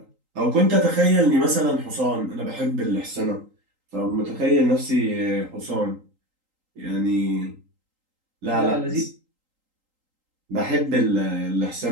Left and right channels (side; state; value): left; late; 3.8 ms